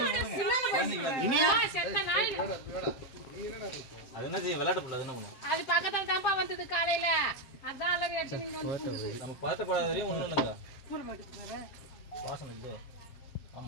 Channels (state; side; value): late; right; 7.5 ms